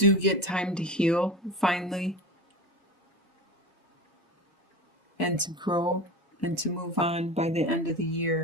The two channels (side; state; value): both; normal; correlation 0.28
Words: get time to heal finally, and to grow and to move on by the end of the